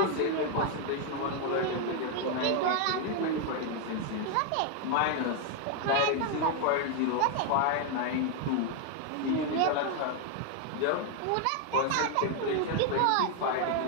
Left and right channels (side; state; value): both; different; correlation 0.00